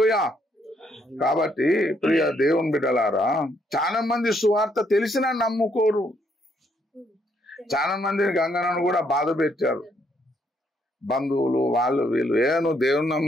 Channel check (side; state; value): both; normal; correlation 0.72